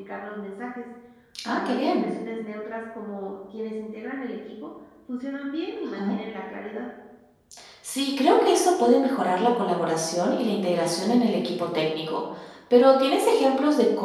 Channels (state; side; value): identical; both; correlation 1.00